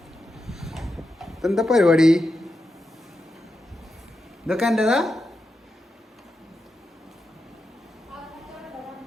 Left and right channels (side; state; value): both; normal; correlation 0.88